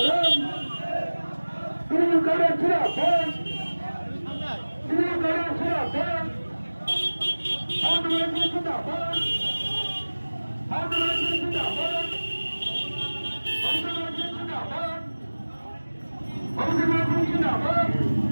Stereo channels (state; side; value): inverted; both; correlation -1.00